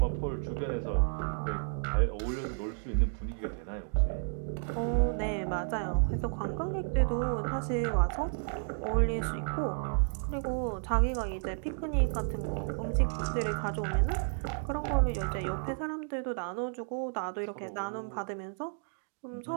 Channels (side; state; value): left; silent; 56 dB below the other